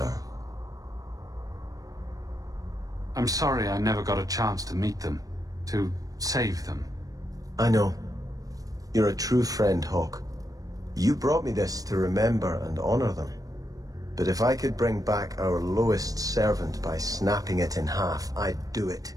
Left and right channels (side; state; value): left; late; 0.17 ms